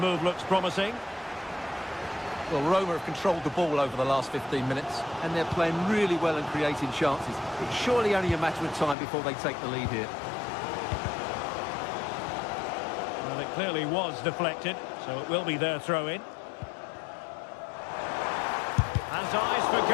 looks promising. Well, Roma have controlled the ball over the last 15 minutes, and they're playing really well and creating chances. It's surely only a matter of time before they take the lead here. Well, it clearly was deflected, so it will be their throw-in. Has eyes for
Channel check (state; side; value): drops out; right; at 9.0 s